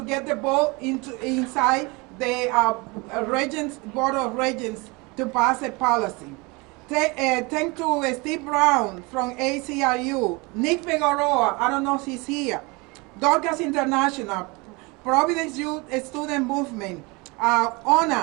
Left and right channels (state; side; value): quieter; left; 26.7 dB